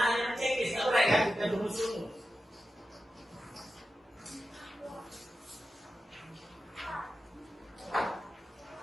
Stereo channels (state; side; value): normal; both; correlation 0.92